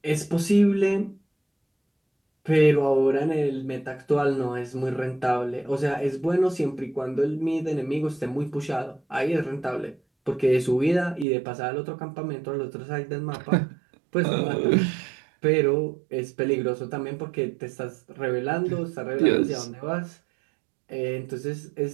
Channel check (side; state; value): left; drops out; at 11.2 s